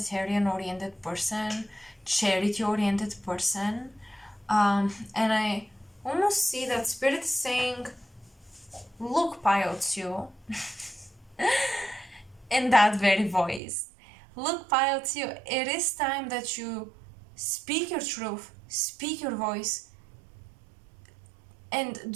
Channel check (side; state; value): left; drops out; at 13.6 s